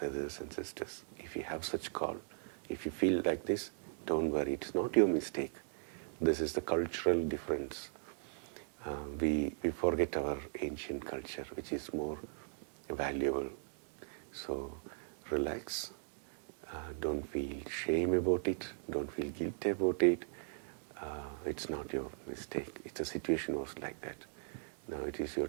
and sisters, if you have such call, if you feel like this, don't worry, it's not your mistake. This is the cultural difference. We forget our ancient culture, which is more valuable. So relax. Don't feel shame about it. Don't feel guilty about it. It's not your mistake. It's a situation was like that. Now it is your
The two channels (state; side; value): silent; left; digital silence